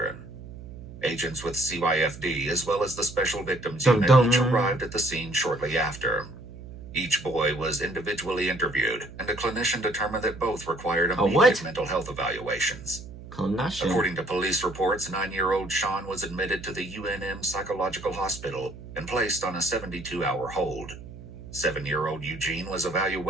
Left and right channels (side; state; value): right; noise; hum, 14 dB below the sound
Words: Agents with CYFD, as well as the Special Victims Dum Unit, dum. each arrived at the scene shortly after. Each boy was individually interviewed, and a clinician determined that both required A immediate what? mental health evaluations. Clinician. According to police reports, 9-year-old Sean was admitted to the UNM Psychological Hospital and placed on a 72-hour hold. 7-year-old Eugene was